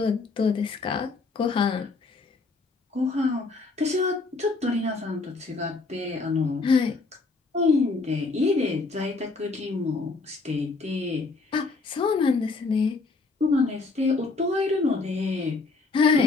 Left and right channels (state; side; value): quieter; right; 3.9 dB